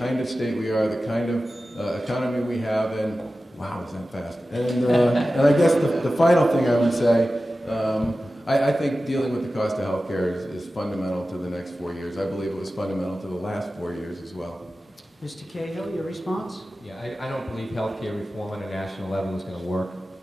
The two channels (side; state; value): both; normal; correlation 0.94